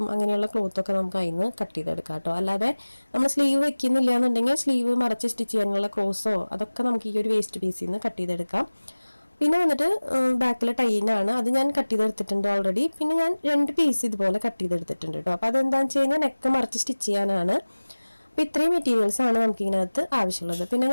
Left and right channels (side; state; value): both; inverted; correlation -1.00